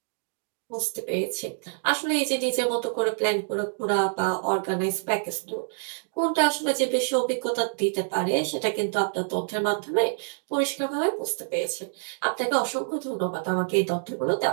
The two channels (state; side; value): silent; left; 60 dB below the other